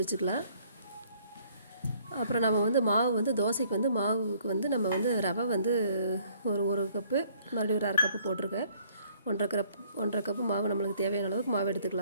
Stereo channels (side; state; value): both; inverted; correlation -0.61